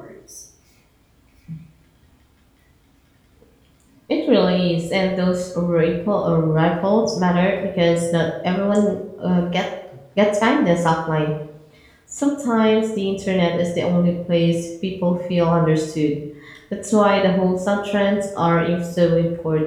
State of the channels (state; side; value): identical; both; correlation 1.00